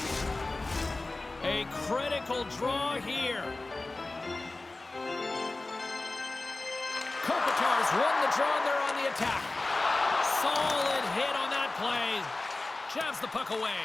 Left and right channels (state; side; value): quieter; right; 3.1 dB